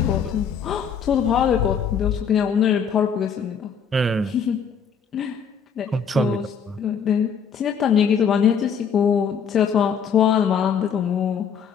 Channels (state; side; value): quieter; right; 6.8 dB